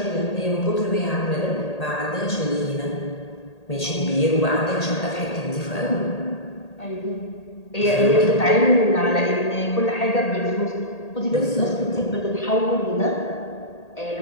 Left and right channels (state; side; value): late; right; 1.8 ms